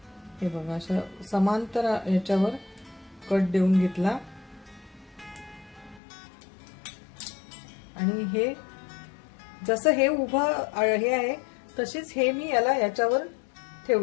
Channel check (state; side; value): drops out; right; at 6.0 s